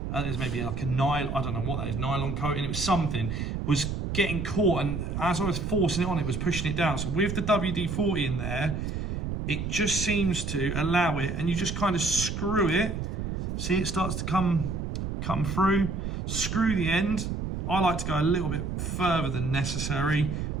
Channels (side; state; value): right; noise; rumble, 3 dB below the sound